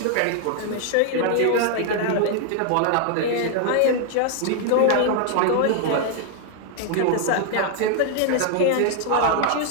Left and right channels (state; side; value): different; both; correlation 0.00